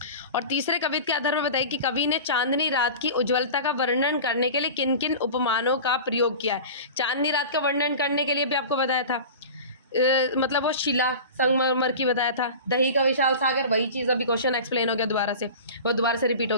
और तीसरे कविता के आधार पर बताइए कि कवि ने चांदनी रात की उज्ज्वलता का वर्णन करने के लिए किन किन उपमानों का प्रयोग किया है। चांदनी रात का वर्णन करने के लिए भी आपको बताया था, मतलब वो शिला संगमरमर की बताया था, दही का विशाल सागर, वही चीज़ अभी क्वेश्चन एक्सप्लेन हो गया दोबारा से, वो दोबारा से रिपीट हो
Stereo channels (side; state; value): both; inverted; correlation -0.34